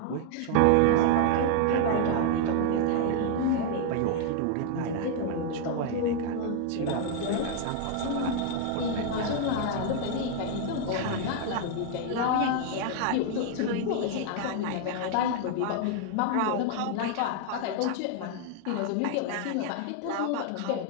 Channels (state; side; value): different; both; correlation 0.00